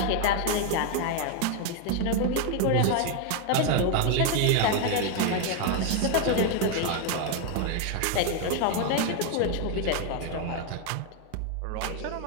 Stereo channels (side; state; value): both; different; correlation 0.00